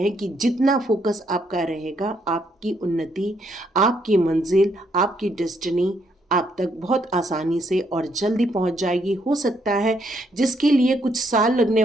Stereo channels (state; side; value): normal; both; correlation 0.73